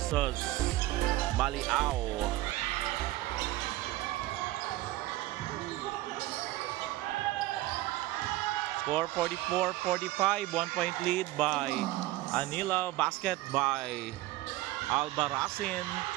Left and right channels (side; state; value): left; quieter; 17.1 dB